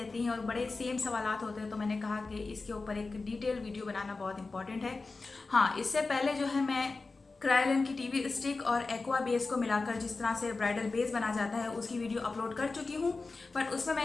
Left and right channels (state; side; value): quieter; right; 3.8 dB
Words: हैं और बड़े सेम सवालात होते हैं, तो मैंने कहा कि इसके ऊपर एक डिटेल वीडियो बनाना बहुत इंपॉर्टेंट है। हाँ, इससे पहले जो है मैं क्रायोलेन की टीवी स्टिक और एक्वा बेस को मिलाकर जिस तरह से ब्राइडल बेस बना जाता है उसकी वीडियो अपलोड कर चुकी हूँ, पर उसमें